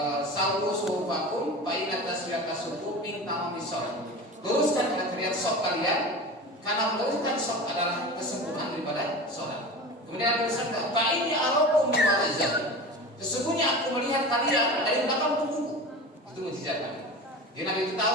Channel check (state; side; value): normal; both; correlation 0.32